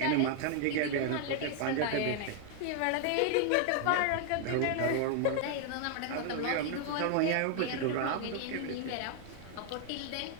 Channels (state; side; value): different; both; correlation 0.00